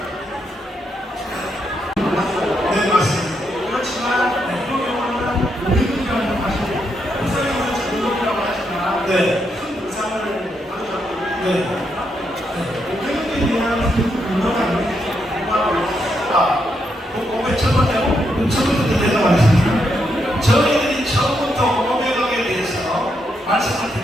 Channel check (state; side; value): normal; both; correlation 0.80